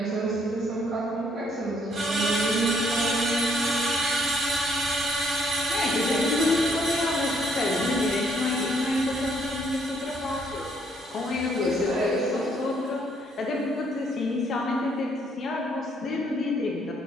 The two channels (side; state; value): both; normal; correlation 0.68